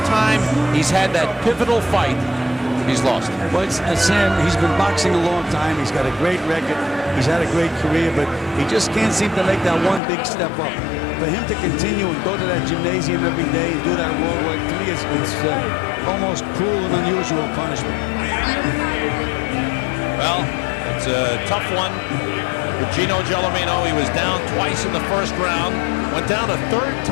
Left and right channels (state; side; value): drops out; right; at 10.0 s